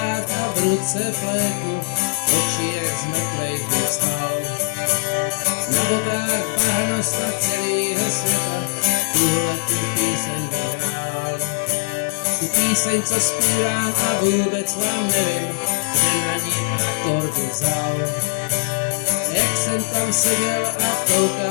a v ruce flétnu, oči jak z mrtvejch vstal. Na botách bahno snad celýho světa, tuhle tu píseň zahrál. Tu píseň, co zpívám a vůbec vám nevím, kde na ní akordy vzal. Jak jsem tam seděl a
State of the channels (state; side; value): silent; right; digital silence